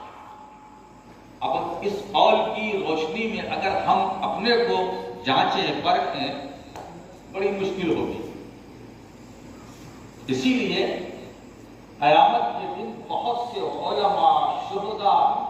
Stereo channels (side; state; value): both; identical; correlation 1.00